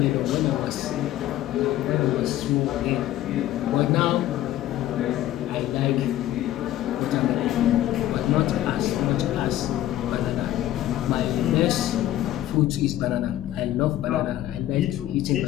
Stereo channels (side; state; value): right; quieter; 13.5 dB